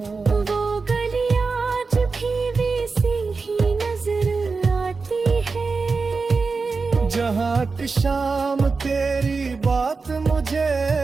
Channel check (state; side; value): quieter; left; 4.4 dB